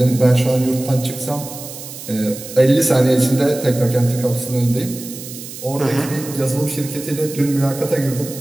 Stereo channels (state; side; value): noise; right; hiss, 12 dB below the sound